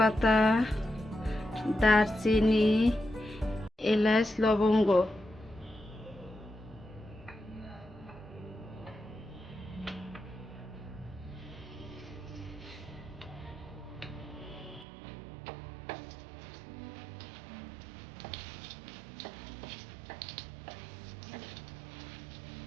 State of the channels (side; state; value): left; drops out; at 14.9 s